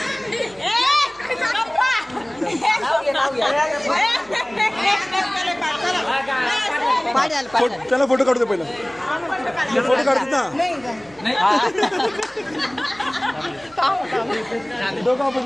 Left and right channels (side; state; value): right; noise; hum, 26 dB below the sound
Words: त्याला फोटो काढू दे पहिला. फोटो काढतात ना. दोघं